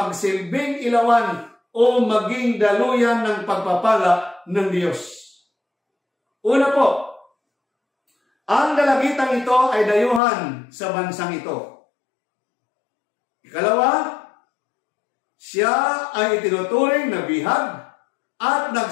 ilawan o maging daluyan ng pagpapala ng Diyos. Una po, ang dalagitang ito ay dayuhan sa bansang ito. Ikalawa, siya ay itinuturing na bihag at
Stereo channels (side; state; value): right; drops out; at 10.2 s